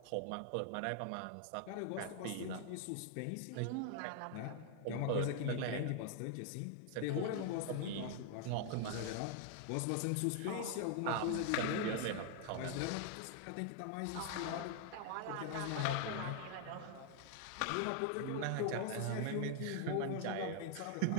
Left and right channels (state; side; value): different; both; correlation 0.00